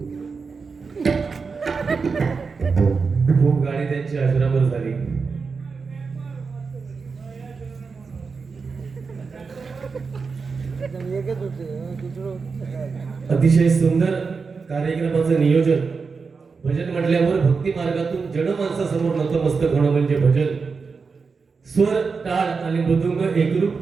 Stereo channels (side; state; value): left; quieter; 4.9 dB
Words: खूप गाणी त्यांची आश्रमवर झाली. अतिशय सुंदर कार्यक्रमाचं नियोजन. भजन म्हटल्यावर भक्ती मार्गातून जनमानसासमोर नतमस्तक होणं म्हणजे भजन. स्वर टाळ आणि मृदुंग एकरूप